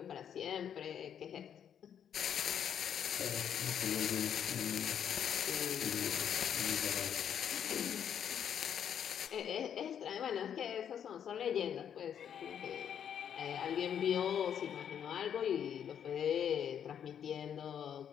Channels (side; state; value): right; quieter; 8.7 dB